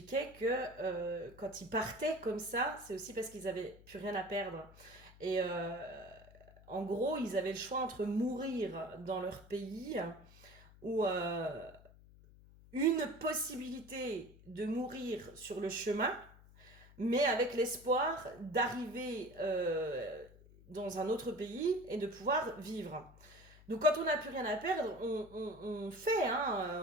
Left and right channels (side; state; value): left; noise; hum, 22 dB below the sound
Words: que quand ils partaient comme ça, c'est aussi parce qu'ils avaient plus rien à perdre. Et en gros, ils avaient le choix entre mourir dans leur pays ou une possibilité de mourir sur le chemin, mais avec l'espoir d'arriver dans un autre pays et de pouvoir vivre. Donc quand on n'a plus rien à perdre, on fait,